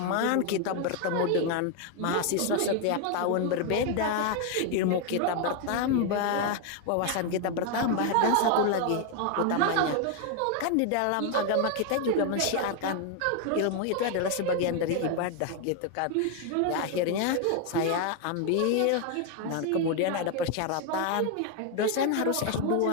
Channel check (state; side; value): different; both; correlation 0.01